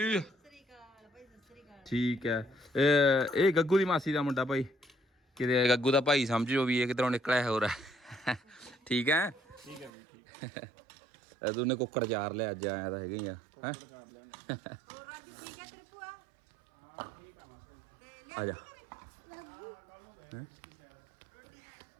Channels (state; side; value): drops out; left; at 9.9 s